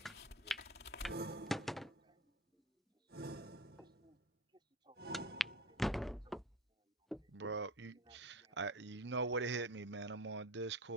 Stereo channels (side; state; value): both; normal; correlation 0.32